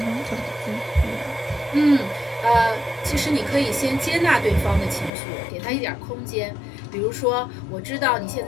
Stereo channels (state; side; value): drops out; right; at 5.1 s